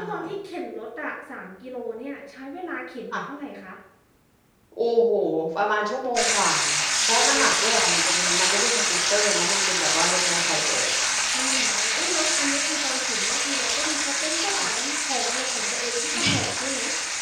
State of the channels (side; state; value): both; identical; correlation 1.00